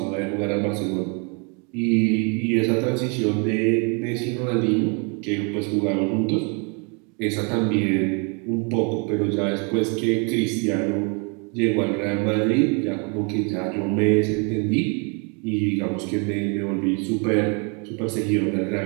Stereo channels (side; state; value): left; quieter; 35.1 dB